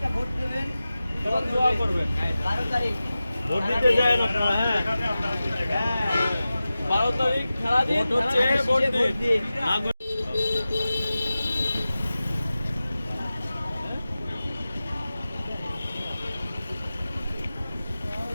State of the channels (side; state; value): both; inverted; correlation -0.95